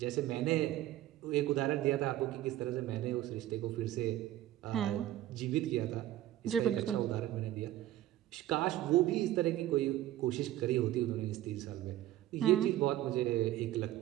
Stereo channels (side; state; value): left; quieter; 14.0 dB